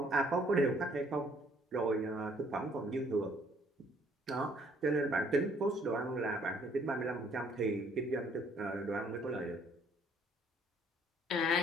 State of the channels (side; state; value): both; normal; correlation 0.62